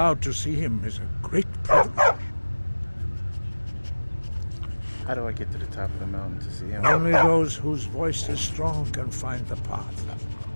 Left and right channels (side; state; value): both; inverted; correlation -1.00